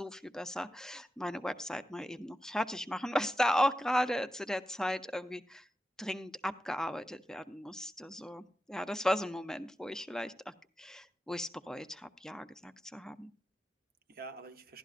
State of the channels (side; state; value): both; normal; correlation 0.90